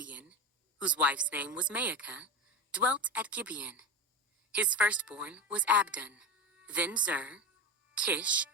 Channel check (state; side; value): normal; both; correlation 0.20